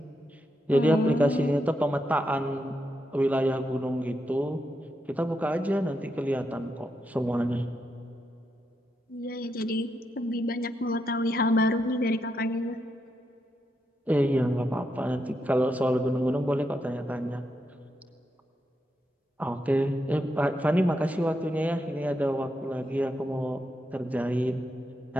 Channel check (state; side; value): normal; both; correlation 0.83